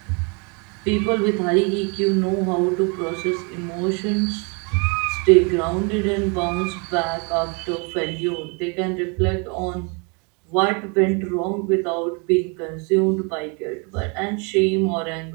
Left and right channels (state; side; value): quieter; left; 34.0 dB